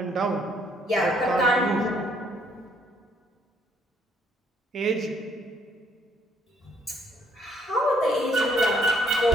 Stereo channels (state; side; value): normal; both; correlation 0.66